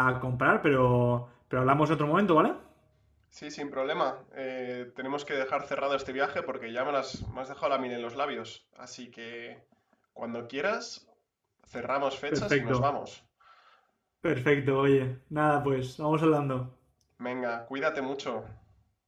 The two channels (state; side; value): identical; both; correlation 1.00